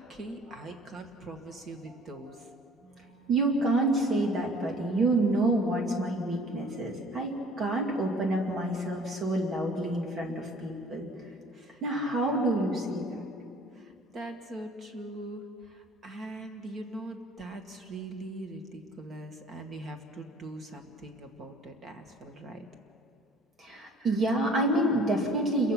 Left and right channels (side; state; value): both; normal; correlation 0.52